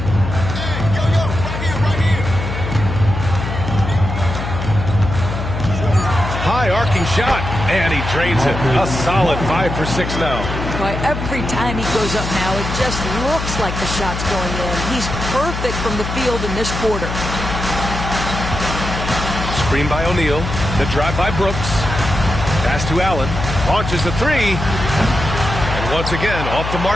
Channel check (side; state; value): left; noise; hum, 5 dB below the sound